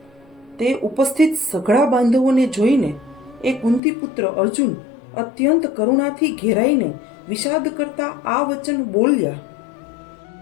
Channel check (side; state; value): right; drops out; at 3.8 s